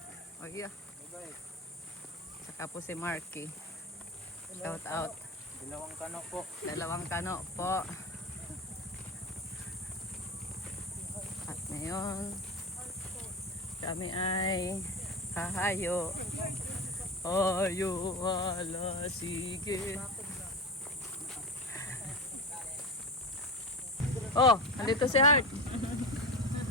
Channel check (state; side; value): normal; both; correlation 0.25